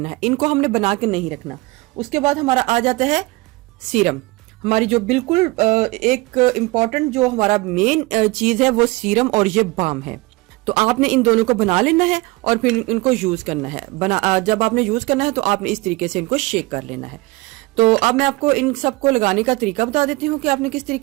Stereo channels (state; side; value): quieter; left; 22.6 dB